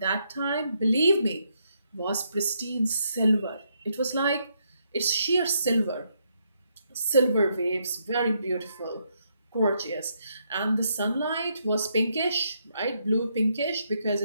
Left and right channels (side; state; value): both; inverted; correlation -0.77